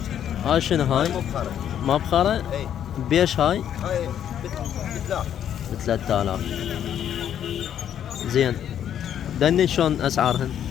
هاي شنو هاي؟ مبخرة. مبخرة؟ اي بيش هاي؟ هاي بثلاث. ب3,000. زين دني شلون اسعارهن؟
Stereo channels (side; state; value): right; quieter; 9.8 dB